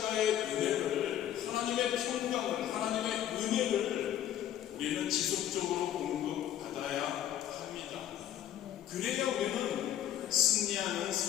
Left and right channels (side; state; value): right; quieter; 11.3 dB